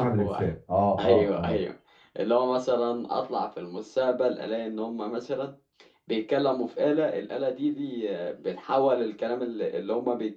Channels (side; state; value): both; identical; correlation 1.00